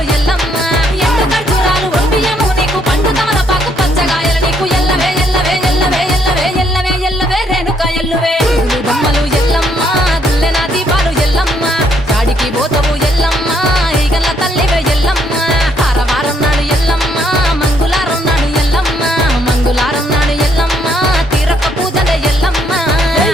ఎల్లమ్మ ఎండు ఖర్జూరాలు ఒంబియము నీకు పండు తమలపాకు పచ్చగాయలు నీకు ఎల్లవే ఎల్లవే ఎల్లవే ఎల్లవే ఎల్లవే ఎల్లవే రేణుక ఎల్లువే పూలు బొమ్మలు ఎల్లమ్మ గుల్లెన దీపాలు ఎల్లమ్మ చాడికి పోతవు ఎల్లమ్మ ఈగల్ల తల్లివే ఎల్లమ్మ వారం నాడు ఎల్లమ్మ మంగళవారం నాడు ఎల్లమ్మ మంగళవారం నాడు ఎల్లమ్మ తీరొక్క పూజలే ఎల్లమ్మ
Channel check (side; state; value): both; normal; correlation 0.70